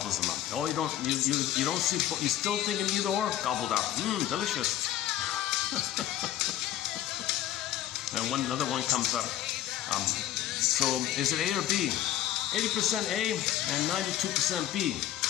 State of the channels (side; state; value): right; quieter; 12.4 dB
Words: them up. Oh, you don't see, you still thinking either or? Gobbled up. Delicious. And another one comes up. So is it A or B? 80% A and 92% B.